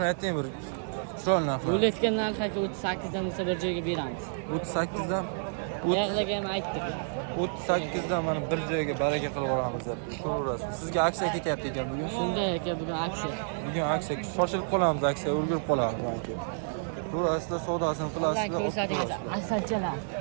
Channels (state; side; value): silent; left; 58 dB below the other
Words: ayting bir. Chiroyli narx. Bo'layotgan narx aka 38 dan bo'lsa bir joyga beramiz. 38 dan Yaqlaga ham aytdik. 38 dan mana bir joyga baraka qilib yuboramiz deb. Ko'raverasiz. Sizga aksiya ketyapti ekan bugun. Shunday aka bugun aksiya. Bugun aksiya, shoshilib qolamiz, aksiya ulgurib qolamiz balki. Ko'rasizlar, savdosini qilasizlar. Ko'rsatingiz asalchalar.